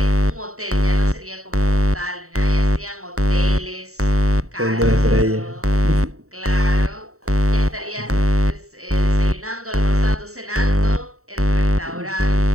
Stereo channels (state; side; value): late; left; 0.64 ms